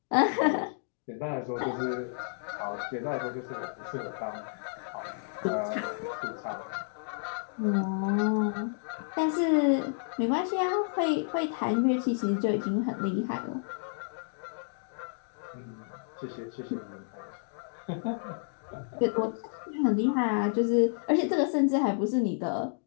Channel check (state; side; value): silent; right; digital silence